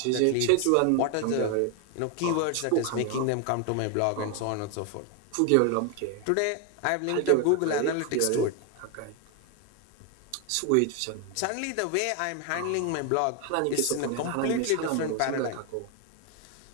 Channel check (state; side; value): different; both; correlation 0.01